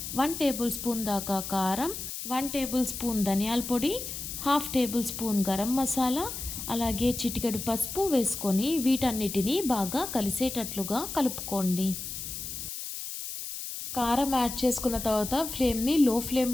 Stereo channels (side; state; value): left; noise; hiss, 7 dB below the sound